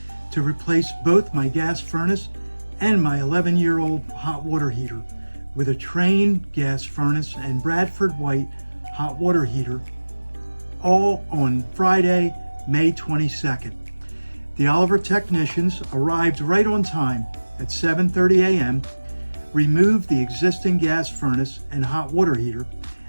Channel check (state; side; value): inverted; both; correlation -1.00